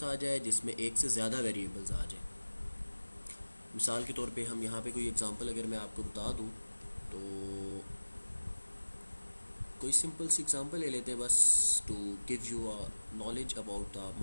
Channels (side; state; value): both; inverted; correlation -1.00